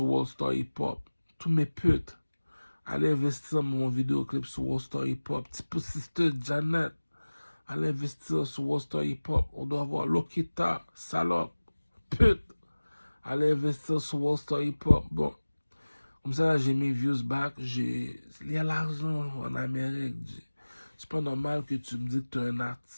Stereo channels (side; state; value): both; inverted; correlation -1.00